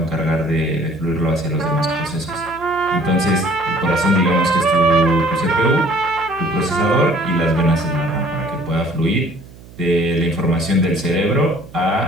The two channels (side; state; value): right; noise; hum, 20 dB below the sound